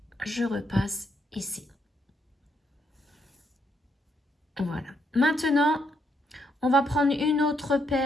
je repasse ici. Voilà. Maintenant, on va prendre une autre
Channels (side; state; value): both; normal; correlation 0.76